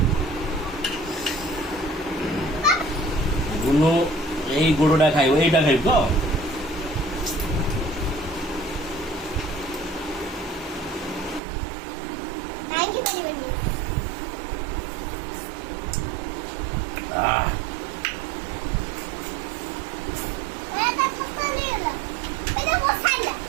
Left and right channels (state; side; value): drops out; left; at 11.4 s